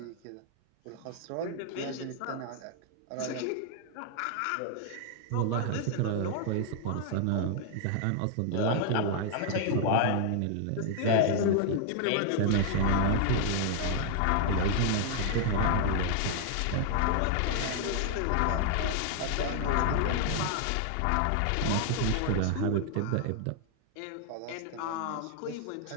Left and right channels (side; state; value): both; different; correlation 0.00